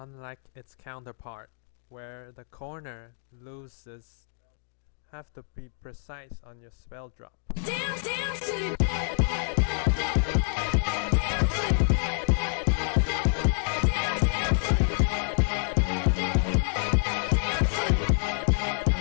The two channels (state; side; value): silent; right; digital silence